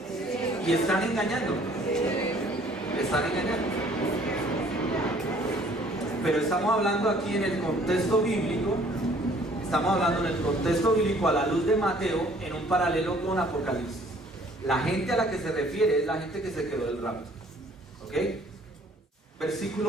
y están engañando. Están engañando. Pero estamos hablando aquí en el contexto bíblico. Estamos hablando en el contexto bíblico a la luz de Mateo, en un paralelo con Apocalipsis. La gente a la que se refiere es la gente que se quedó del rapto. ¿Ok?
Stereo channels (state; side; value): normal; both; correlation 0.57